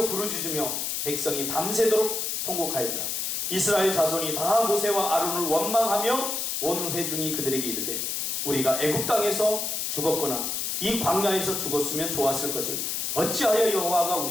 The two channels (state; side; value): noise; left; hiss, 1 dB below the sound